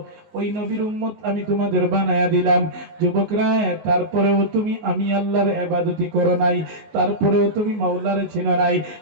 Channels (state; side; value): late; left; 19 ms